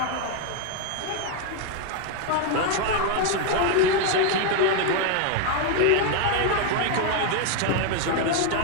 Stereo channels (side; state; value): both; different; correlation 0.01